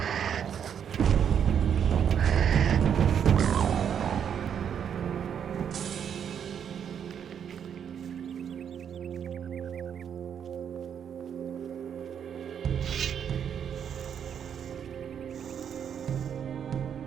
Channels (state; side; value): quieter; left; 8.2 dB